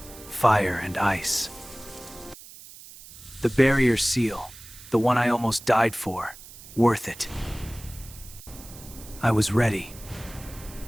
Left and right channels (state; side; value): noise; right; hiss, 18 dB below the sound